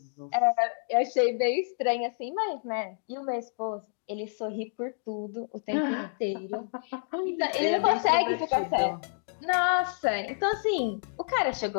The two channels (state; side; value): silent; right; digital silence